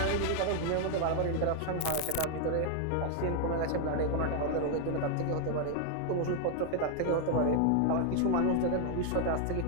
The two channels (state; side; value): different; both; correlation 0.00